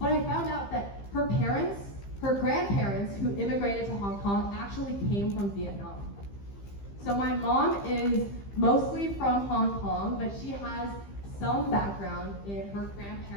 I found out that her grandparents who immigrated to Hong Kong actually came from Vietnam. So my mom is mostly from Hong Kong, but she has some background in her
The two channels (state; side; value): late; right; 15 ms